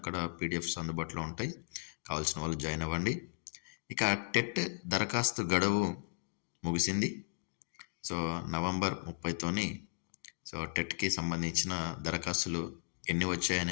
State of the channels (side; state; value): right; silent; digital silence